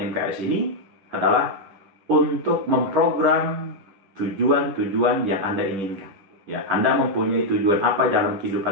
MKS ini adalah untuk memprogram tujuan-tujuan yang Anda inginkan. Ya, Anda mempunyai tujuan apa dalam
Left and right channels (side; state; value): left; late; 10 ms